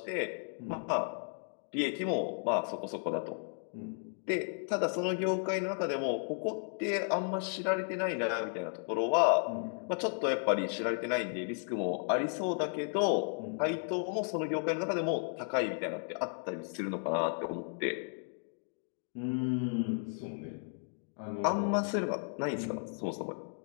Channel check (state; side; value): silent; right; 55 dB below the other